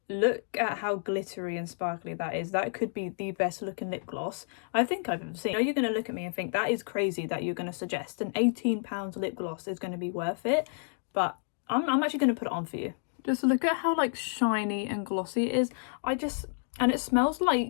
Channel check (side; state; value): right; silent; digital silence